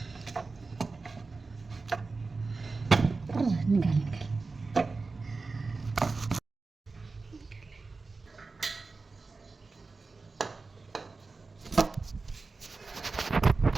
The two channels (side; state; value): left; quieter; 4.0 dB